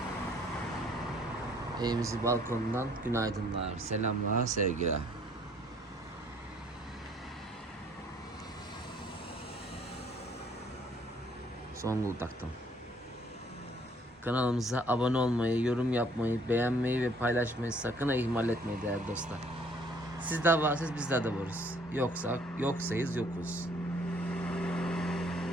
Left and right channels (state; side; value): normal; both; correlation 0.61